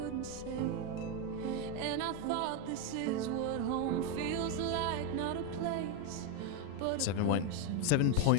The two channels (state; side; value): different; both; correlation 0.02